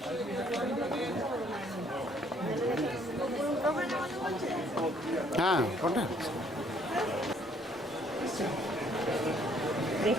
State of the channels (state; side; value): normal; both; correlation 0.63